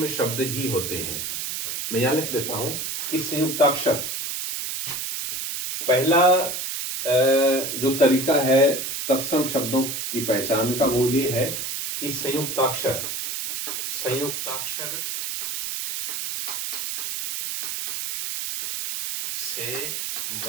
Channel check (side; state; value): right; noise; hiss, 4 dB below the sound